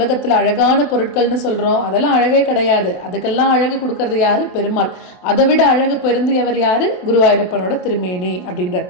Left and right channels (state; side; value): late; right; 27 ms